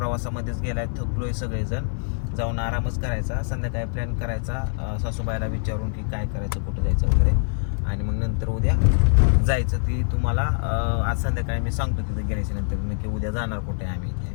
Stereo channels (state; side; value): silent; right; 55 dB below the other